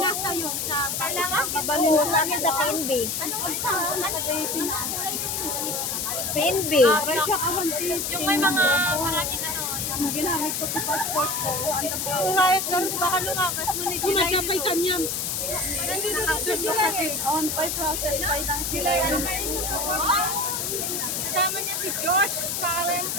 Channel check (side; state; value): left; noise; hiss, 1 dB below the sound